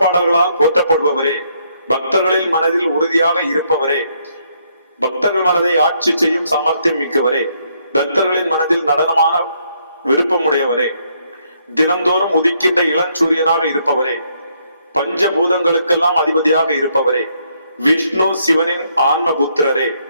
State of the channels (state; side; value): inverted; both; correlation -0.72